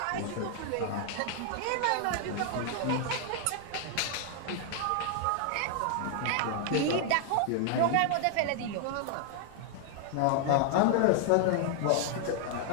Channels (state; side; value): different; both; correlation 0.00